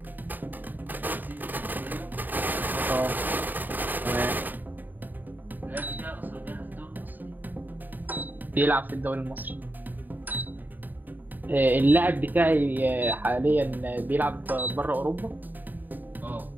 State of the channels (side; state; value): left; late; 0.088 ms